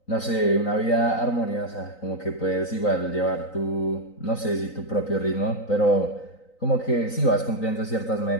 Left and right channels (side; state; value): right; late; 3.9 ms